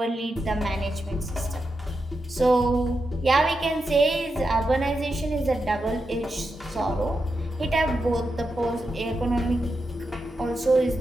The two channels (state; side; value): normal; both; correlation 0.87